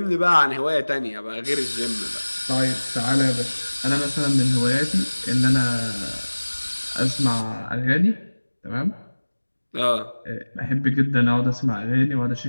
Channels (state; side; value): inverted; both; correlation -1.00